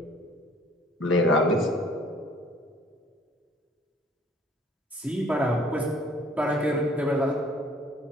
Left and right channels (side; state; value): both; normal; correlation 0.55